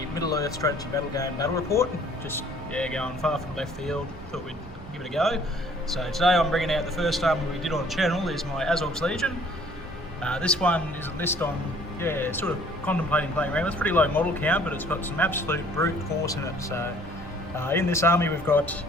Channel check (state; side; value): normal; both; correlation 0.56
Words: Middle-earth strategy battle game battle report. Just going far from left field, thought we'd give it a go. So today I'm bringing out the first army we did on the channel is my Azogs Legion. This one is a list on, sort of contemplating playing around. It's pretty low model count, but it's got some absolute brute force in it. So in this army we've got